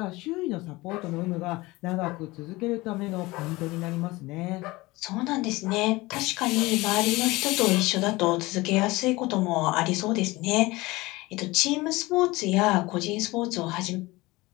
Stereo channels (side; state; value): right; quieter; 21.2 dB